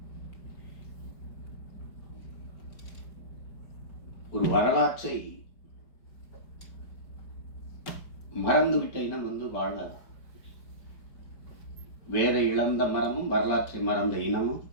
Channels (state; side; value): late; right; 4.9 ms